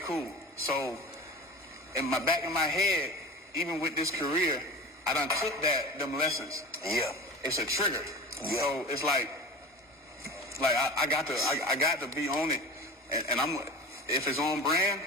So in the back of my head, even with this career, I done took them lessons. Yeah. It's a trigger. Yeah. So it's like I got to be on it, and I'm if it's on brand,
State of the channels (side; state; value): both; normal; correlation 0.33